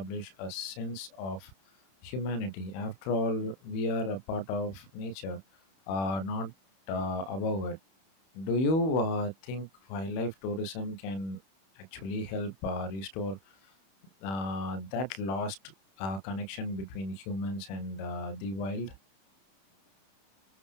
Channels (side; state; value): right; late; 31 ms